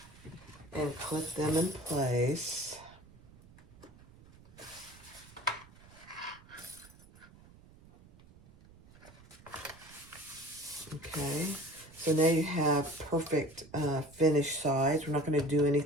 and clip them in place. Okay, so now you have perfect finished sides. We're not going to do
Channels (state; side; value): noise; right; rumble, 23 dB below the sound